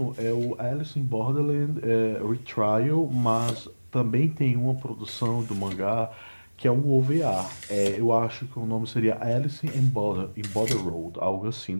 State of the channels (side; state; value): both; inverted; correlation -1.00